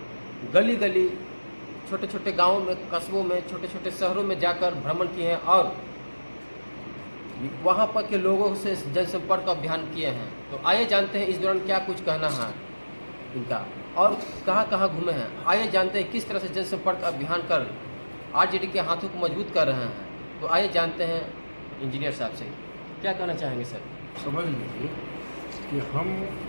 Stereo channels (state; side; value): inverted; both; correlation -1.00